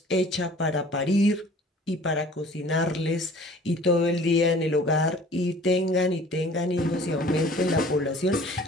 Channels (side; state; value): both; normal; correlation 0.49